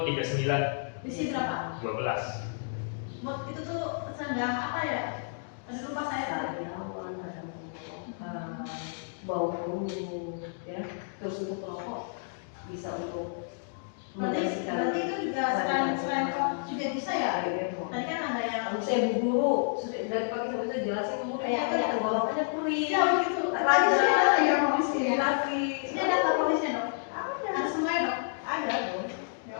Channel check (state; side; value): silent; right; digital silence